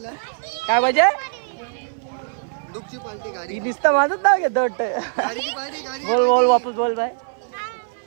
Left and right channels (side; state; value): left; silent; 58 dB below the other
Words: काय पाहिजे? दुःखची पार्टी गाडी दिसतं माझंच नाव घेतो वाटतं. गाडीची पाहिजे. गाडी बोल वापस बोल बाय.